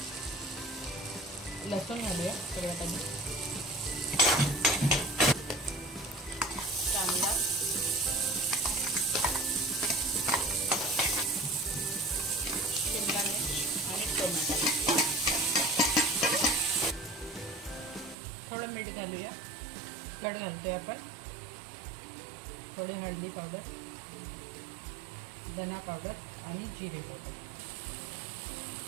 लसूण घालूया सगळ्यात आधी, कांदा, शिमला मिर्च आणि टोमॅटो। थोडं मीठ घालूया, कट घालतोय आपण। थोडी हळदी पावडर, धना पावडर आणि जिरे पावडर।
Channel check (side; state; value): left; drops out; at 18.2 s